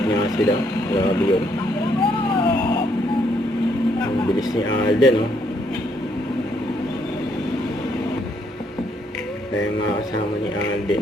nga sila. Grabe yun. Ang bilis ni Alden, no? Kaya nga kasama ni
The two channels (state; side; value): normal; both; correlation 0.71